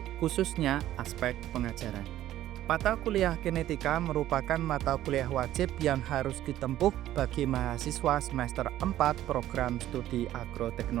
khususnya aspek pengajaran. Mata kuliah genetika merupakan mata kuliah wajib yang harus ditempuh bagi mahasiswa semester 4 program studi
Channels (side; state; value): left; quieter; 13.3 dB